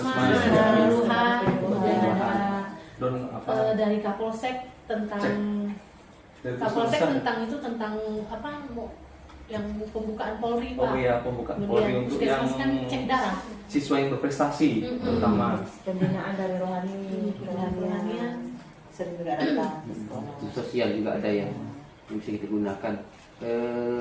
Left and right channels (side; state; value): both; identical; correlation 1.00